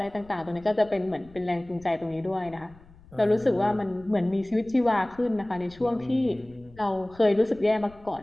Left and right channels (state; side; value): noise; left; rumble, 24 dB below the sound